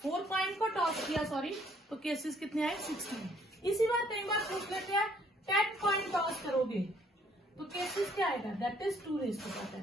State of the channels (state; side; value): normal; both; correlation 0.64